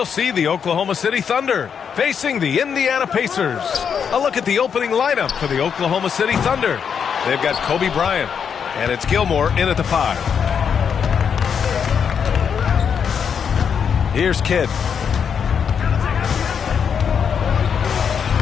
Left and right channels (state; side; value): quieter; right; 7.1 dB